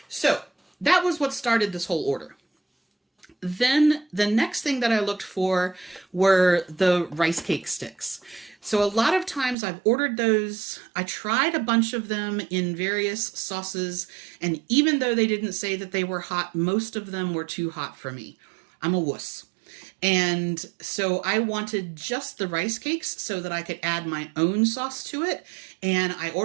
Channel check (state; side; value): drops out; left; at 9.6 s